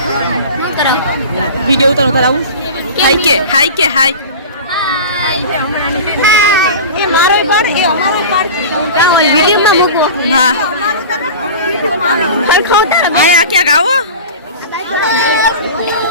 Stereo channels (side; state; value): both; inverted; correlation -0.33